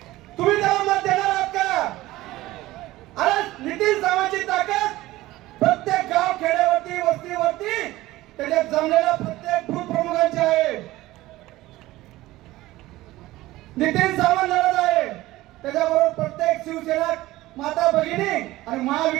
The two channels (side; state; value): left; quieter; 17.4 dB